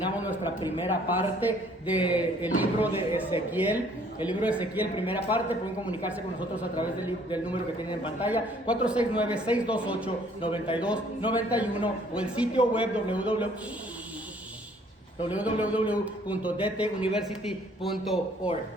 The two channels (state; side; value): normal; both; correlation 0.60